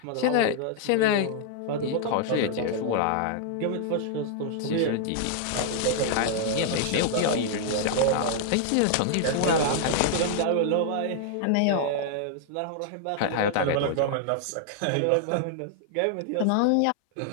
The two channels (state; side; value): different; both; correlation -0.01